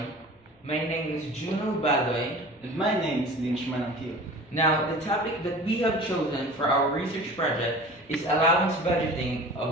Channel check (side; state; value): both; normal; correlation 0.40